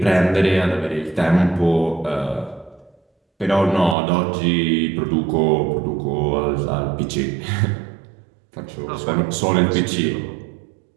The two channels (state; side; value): drops out; left; at 4.0 s